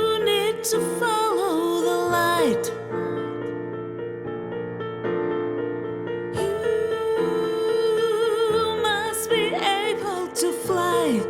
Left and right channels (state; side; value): identical; both; correlation 1.00